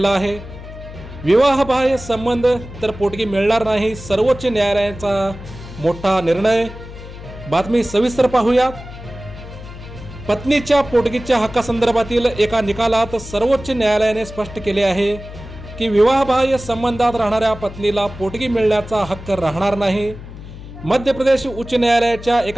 आहे. विवाहबाह्य संबंध तर पोटगी मिळणार नाही, सर्वोच्च न्यायालयाचा मोठा निर्णय. बातमी सविस्तर पाहूयात. पत्नीच्या पोटगीच्या हक्कासंदर्भातील एका निकालात सर्वोच्च न्यायालयाने स्पष्ट केले आहे की विवाहबाह्य संबंधात राहणाऱ्या पत्नीला पोटगी मिळण्याचा हक्क राहणार नाही. मध्य प्रदेश उच्च न्यायालयाच्या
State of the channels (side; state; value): left; noise; hum, 14 dB below the sound